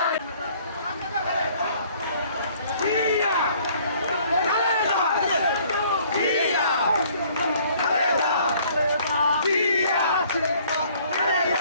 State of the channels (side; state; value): both; inverted; correlation -0.58